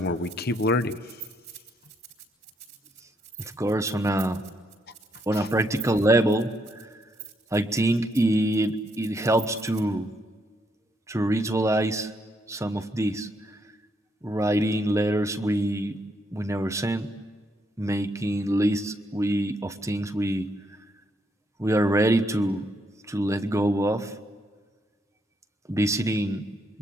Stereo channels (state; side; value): normal; both; correlation 0.75